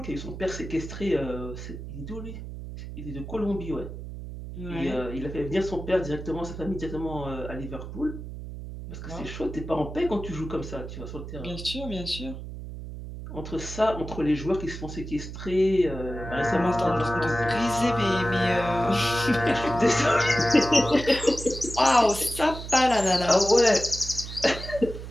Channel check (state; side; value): noise; right; hum, 10 dB below the sound